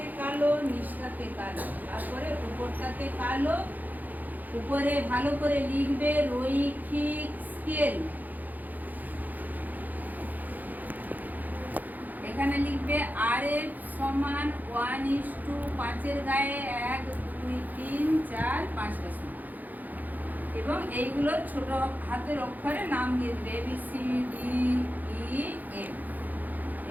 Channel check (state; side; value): late; left; 0.083 ms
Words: কালো, নিচটাতে কালো, তারপরে উপরটাতে কালো। উপরে ভালো করে লিখবে রৈখিক স্কেল, এখানে লিখবে RF সমান 1:5 এর গায়ে 1, 2, 3, 4, 5টা সমান, এবং এইগুলোর ছোট হাতের অক্ষরে নাম দিয়ে দিবে ABCDEF,